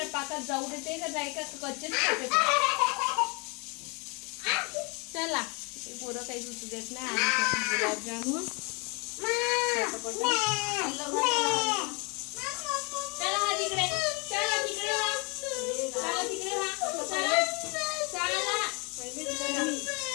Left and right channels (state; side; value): quieter; right; 31.3 dB